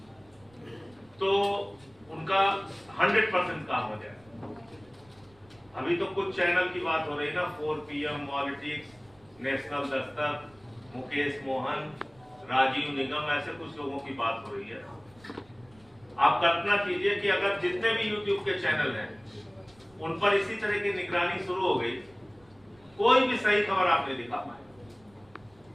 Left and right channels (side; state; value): right; noise; rumble, 29 dB below the sound